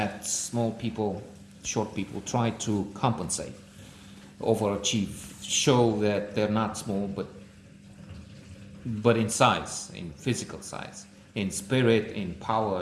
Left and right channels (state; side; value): identical; both; correlation 1.00